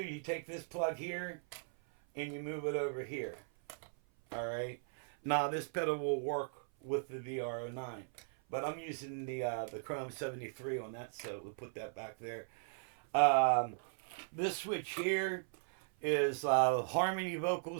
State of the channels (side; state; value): left; silent; 53 dB below the other